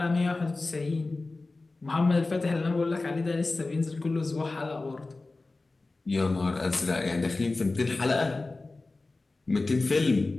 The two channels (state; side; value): quieter; right; 3.4 dB